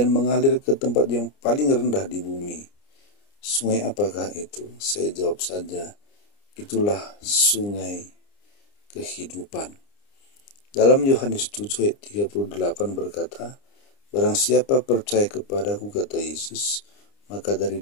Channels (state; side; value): late; right; 29 ms